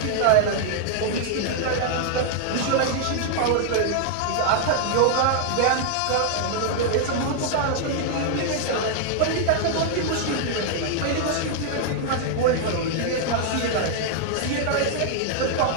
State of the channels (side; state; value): both; different; correlation 0.00